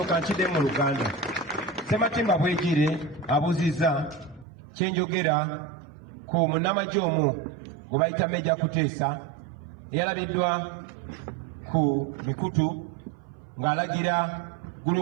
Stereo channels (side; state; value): left; drops out; at 4.5 s